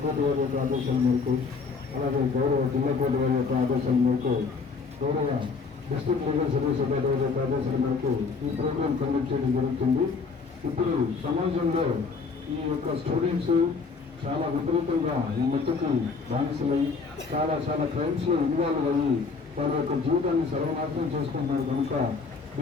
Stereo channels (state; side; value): quieter; right; 4.8 dB